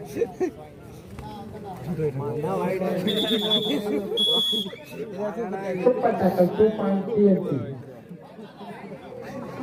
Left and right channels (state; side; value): identical; both; correlation 1.00